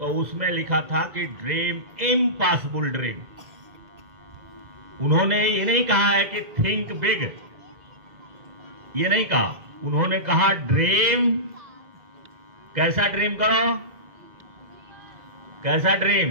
उसमें लिखा था कि ड्रीम इम्पॉसिबल ड्रीम। उन्होंने ये नहीं कहा है कि थिंक बिग, ये नहीं कहा, उन्होंने कहा ड्रीम, कैसा ड्रीम करो, कैसा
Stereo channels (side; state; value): left; late; 2.0 ms